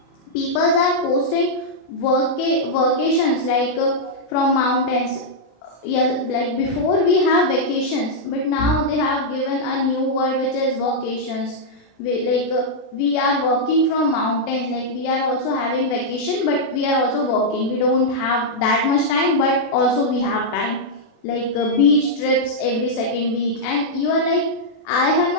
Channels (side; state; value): right; late; 37 ms